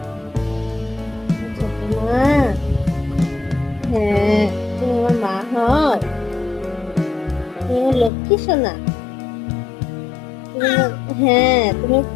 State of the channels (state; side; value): drops out; right; at 8.1 s